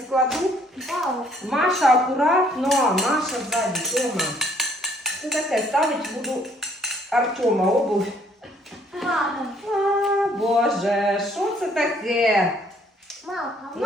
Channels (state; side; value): normal; both; correlation 0.63